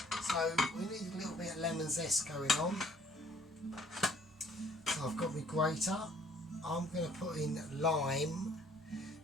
So we need a little bit of lemon zest going on. So I've got my grater. I'm going to put in lime,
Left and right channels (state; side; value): normal; both; correlation 0.59